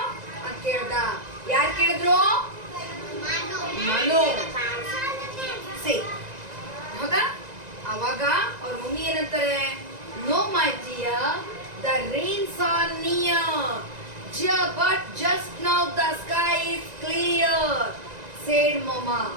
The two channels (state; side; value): late; left; 1.9 ms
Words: ಅಂತ ಕೇಳ್ದ. ಯಾರು ಕೇಳಿದ್ರು? ಮನು. ಸಿ, ಹೌದಾ? ಅವಾಗ ಅವ್ರ ಮಮ್ಮಿ ಏನಂತಾರೆ, no my dear, the rains are near, but just now the sky is clear said mamma.